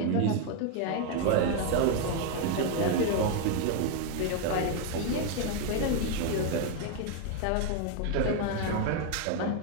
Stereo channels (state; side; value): different; both; correlation 0.01